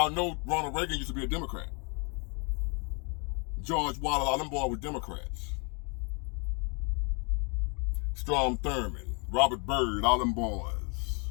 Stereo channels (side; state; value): right; quieter; 34.8 dB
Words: know Ronald Reagan used to be a Democrat? George Wallace, all them boys were Democrats. Strom Thurmond, Robert Byrd, all them boys.